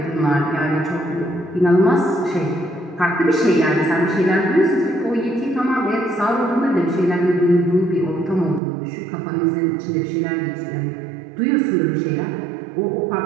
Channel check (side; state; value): left; drops out; at 8.6 s